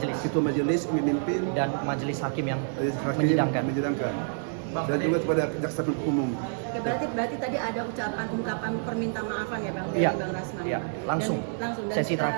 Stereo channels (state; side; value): silent; left; 59 dB below the other